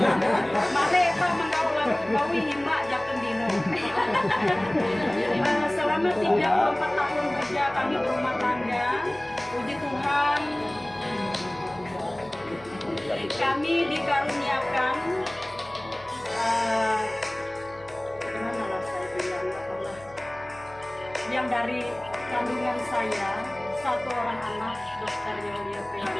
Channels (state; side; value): noise; left; hum, 23 dB below the sound